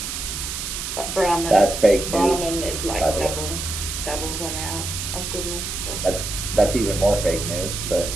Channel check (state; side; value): noise; right; hiss, 5 dB below the sound